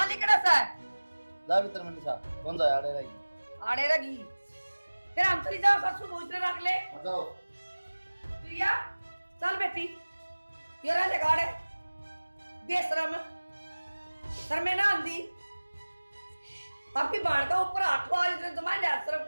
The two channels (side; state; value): both; inverted; correlation -1.00